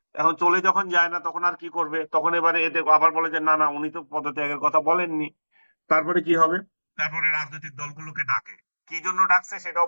এখন চলে যখন যায় না তখন আর কি করবে, তখন এবারে এদের আবার বলে যে না না, উনি তো পদত্যাগের কথা বলেননি। তারপরে কি হবে? তারপরে রাজনৈতিক দলগুলোকে ডাকে, কি জন্য ডাকছে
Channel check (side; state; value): both; inverted; correlation -1.00